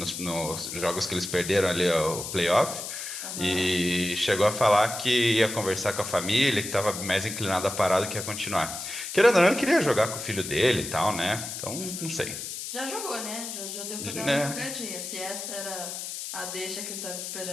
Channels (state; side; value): noise; left; hiss, 7 dB below the sound